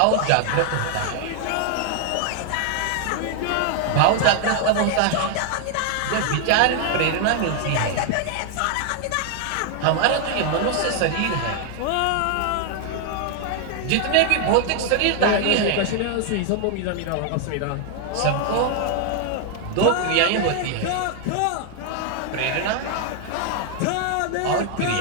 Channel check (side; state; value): both; different; correlation 0.00